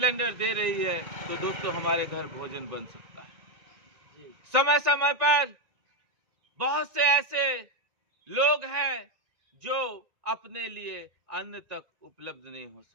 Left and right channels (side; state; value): left; late; 1.9 ms